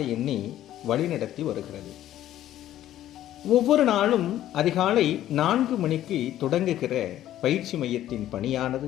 எண்ணி வழிநடத்தி வருகிறது. ஒவ்வொரு நாளும் அதிகாலை 4 மணிக்கு தொடங்குகிற பயிற்சி மையத்தின்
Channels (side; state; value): right; quieter; 12.7 dB